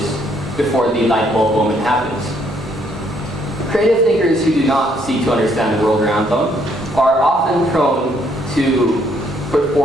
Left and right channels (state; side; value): normal; both; correlation 0.68